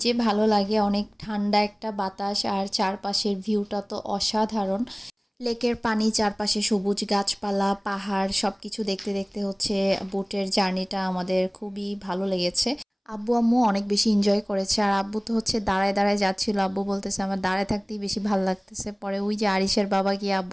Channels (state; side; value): identical; both; correlation 1.00